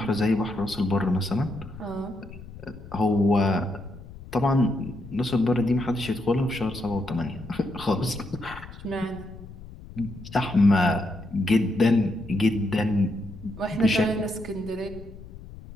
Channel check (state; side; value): noise; left; rumble, 15 dB below the sound